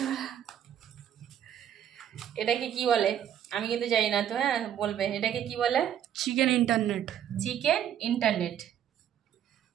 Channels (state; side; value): quieter; left; 10.0 dB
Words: ওরা। এটাকে কি বলে আমি কিন্তু জানি না, তো হ্যাঁ বলবে এটাকে কি বলে। Chicken internet. Chicken internet.